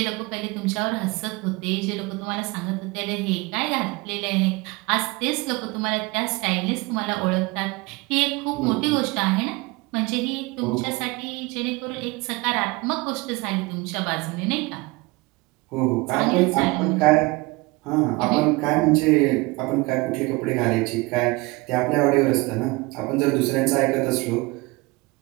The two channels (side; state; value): left; quieter; 24.0 dB